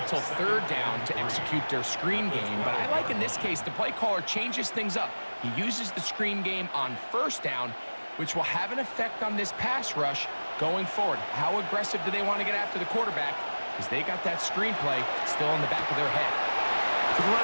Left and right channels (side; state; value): both; inverted; correlation -1.00